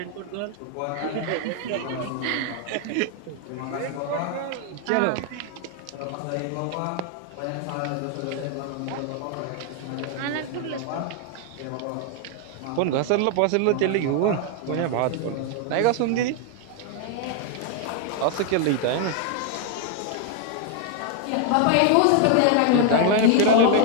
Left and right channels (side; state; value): both; different; correlation 0.00